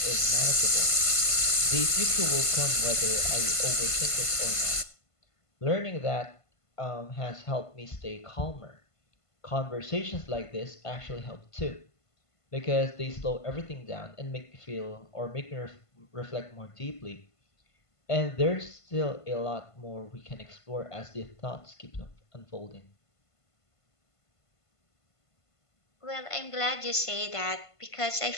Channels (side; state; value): right; late; 1.5 ms